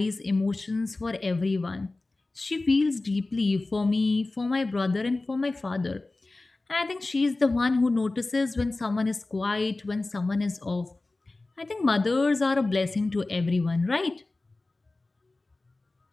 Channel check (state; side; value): quieter; right; 3.1 dB